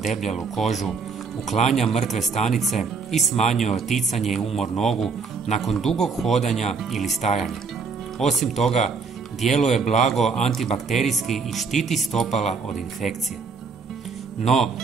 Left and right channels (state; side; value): quieter; left; 4.9 dB